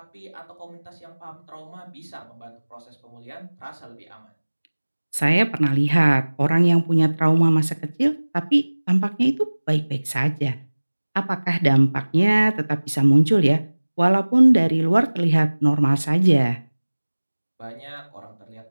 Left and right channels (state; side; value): inverted; both; correlation -1.00